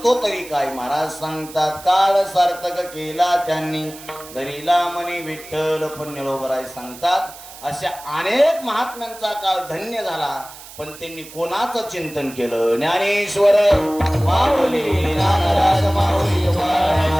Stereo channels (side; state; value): right; noise; hiss, 17 dB below the sound